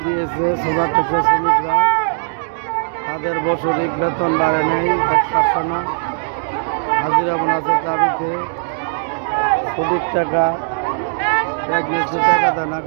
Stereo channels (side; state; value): left; silent; digital silence